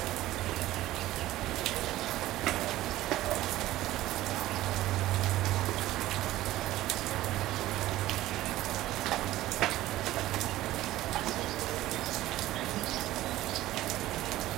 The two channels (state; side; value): quieter; left; 15.6 dB